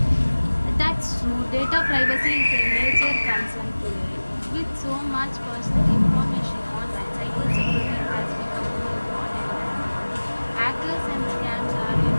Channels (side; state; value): both; inverted; correlation -1.00